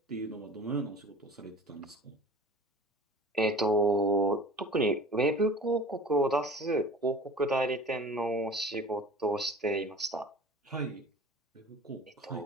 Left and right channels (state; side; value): normal; both; correlation 0.42